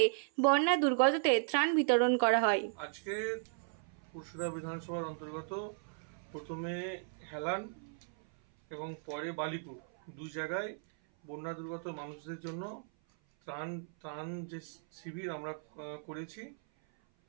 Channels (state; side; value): silent; left; 54 dB below the other